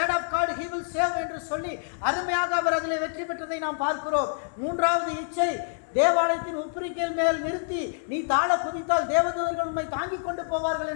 of God he will save என்று சொல்லி அருமையாக அவர் அதில் வெற்றி பெற்றதை நாம் பார்க்கிறோம். 3வது இச்சை தேவாலயத்தின் உப்பரிக்கையில் மேல் நிறுத்தி நீ தாழ குதித்தால் தேவதூதர்கள் உண்மை தாங்கிக் கொண்டு போவார்கள்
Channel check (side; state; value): right; silent; 60 dB below the other